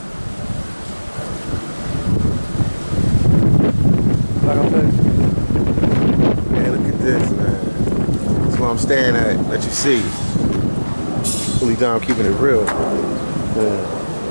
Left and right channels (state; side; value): inverted; both; correlation -1.00